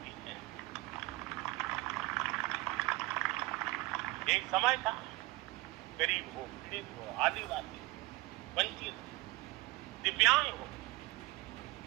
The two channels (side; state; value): left; quieter; 21.2 dB